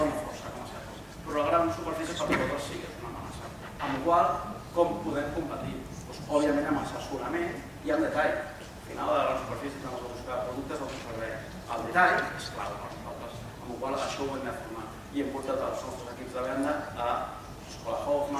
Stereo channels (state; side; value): identical; both; correlation 1.00